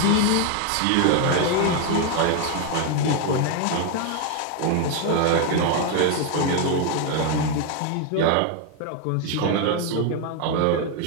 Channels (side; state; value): both; different; correlation 0.01